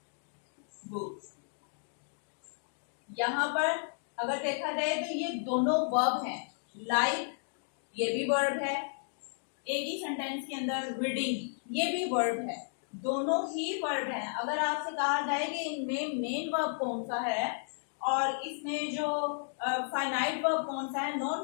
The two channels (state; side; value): silent; right; digital silence